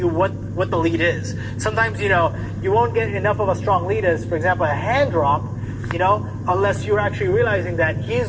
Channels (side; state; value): both; identical; correlation 1.00